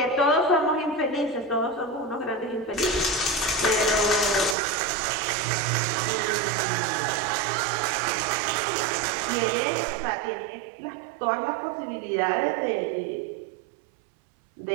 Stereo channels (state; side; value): drops out; left; at 4.5 s